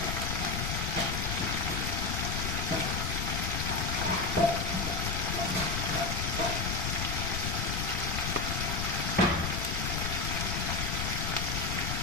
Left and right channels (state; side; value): noise; left; rumble, 1 dB below the sound